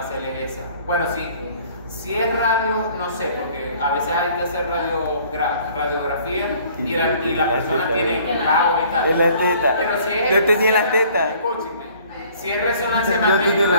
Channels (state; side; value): inverted; both; correlation -0.55